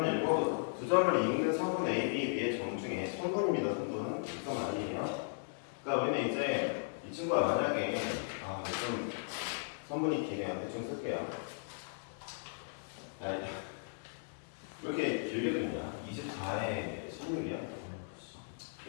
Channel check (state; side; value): silent; right; digital silence